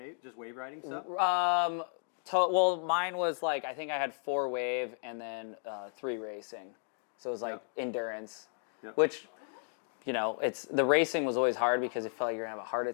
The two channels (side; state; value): right; silent; 55 dB below the other